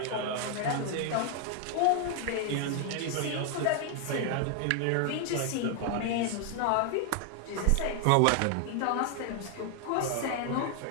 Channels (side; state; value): both; different; correlation 0.00